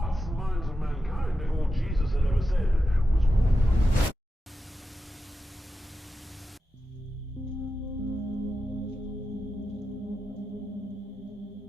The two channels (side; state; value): both; normal; correlation 0.90